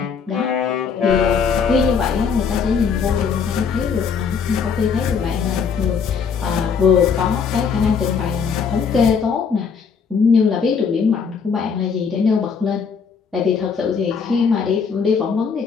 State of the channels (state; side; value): quieter; right; 6.1 dB